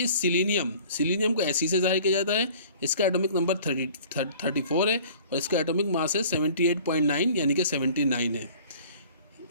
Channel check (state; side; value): inverted; both; correlation -0.48